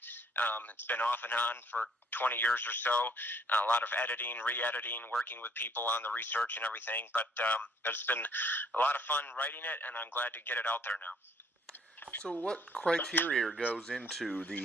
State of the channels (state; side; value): normal; both; correlation 0.63